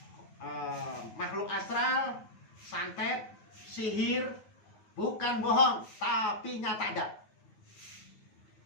makhluk astral, santet, sihir bukan bohong, tapi nyata ada.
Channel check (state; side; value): late; right; 9.3 ms